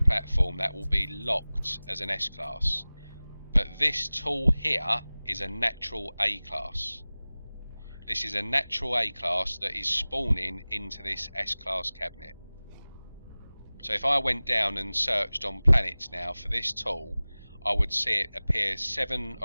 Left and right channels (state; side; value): inverted; both; correlation -0.99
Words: that will be locked as an S class. But this tool here is a natural A class. This is a natural A class that is spawning into this S class cabinet. So if I went down and searched on planets now for this tool, I would see it appear 7